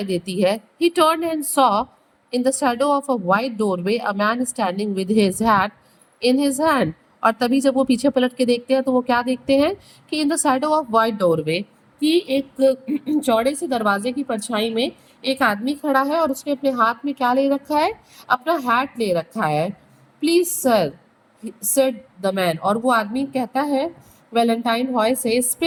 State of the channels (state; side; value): identical; both; correlation 1.00